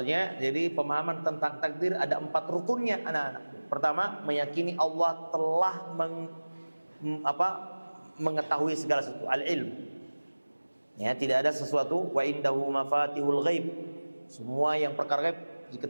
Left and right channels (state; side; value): inverted; both; correlation -1.00